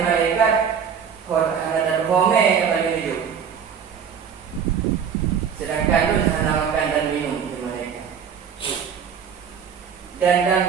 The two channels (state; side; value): quieter; left; 7.3 dB